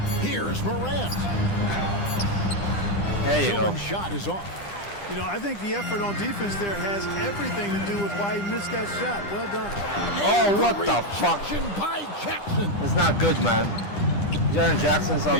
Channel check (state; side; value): late; right; 10 ms